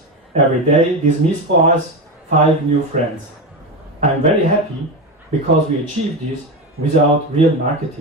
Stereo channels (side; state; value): both; normal; correlation 0.17